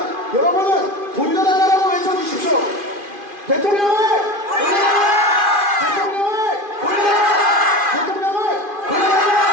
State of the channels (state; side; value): late; left; 2.5 ms